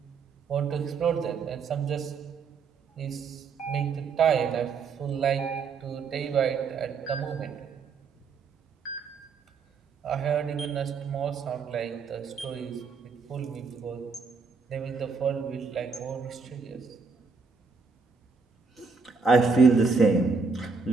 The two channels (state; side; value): quieter; left; 4.9 dB